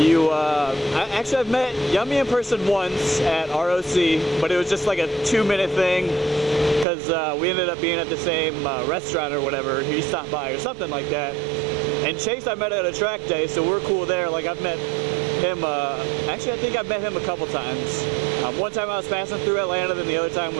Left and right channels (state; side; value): drops out; left; at 6.9 s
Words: met Yummy in person once at ROC, but it was just like a 2-minute thing because we ended up being at the same restaurant or whatever. He stopped by or something like that. And Chase I met at a track day, so we're cool there. Like I've met him, actually I think I've met him a couple times. One time I was passing through Atlanta, then the other time